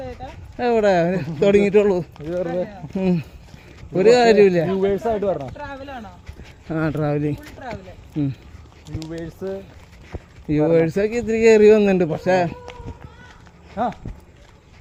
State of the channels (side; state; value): both; identical; correlation 1.00